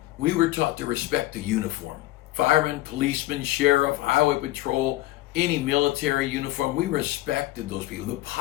we were taught to respect the uniform. Fireman, policeman, sheriff, highway patrol, any military uniform, we respected those people. The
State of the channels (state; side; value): quieter; right; 17.1 dB